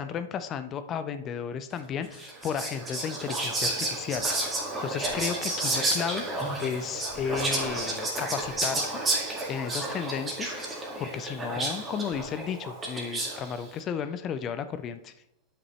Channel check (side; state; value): both; normal; correlation 0.32